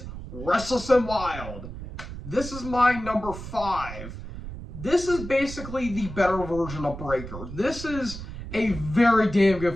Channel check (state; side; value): noise; right; rumble, 10 dB below the sound